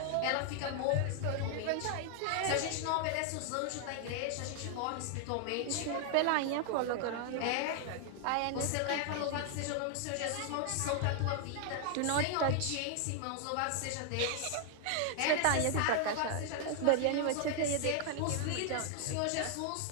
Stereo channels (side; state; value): both; different; correlation 0.00